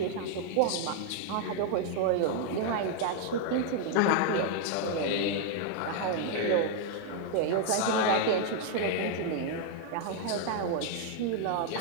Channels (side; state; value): both; different; correlation 0.00